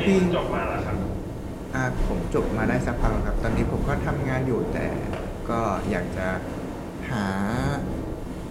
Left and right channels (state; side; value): identical; both; correlation 1.00